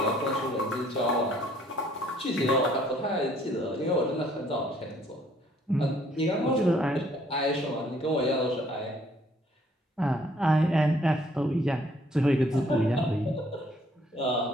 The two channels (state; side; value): normal; both; correlation 0.62